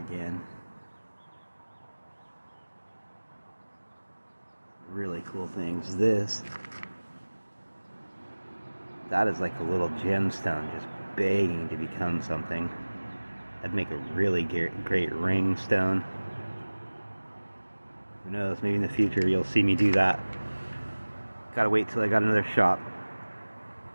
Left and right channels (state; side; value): inverted; both; correlation -1.00